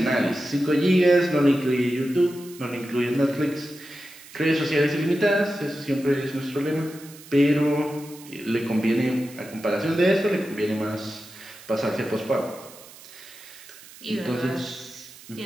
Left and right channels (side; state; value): right; noise; hiss, 19 dB below the sound